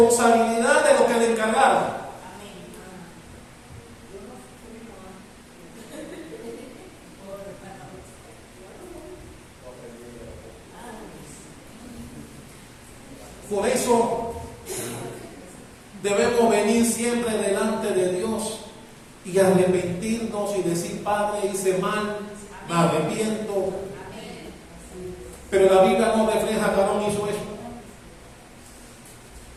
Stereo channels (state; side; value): identical; both; correlation 1.00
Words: de lo que le encargaron. Por eso debemos venir siempre delante de Dios y arrepentirnos y decir: Padre, hice mal, me arrepiento. Pero la Biblia no refleja que Aarón hizo eso.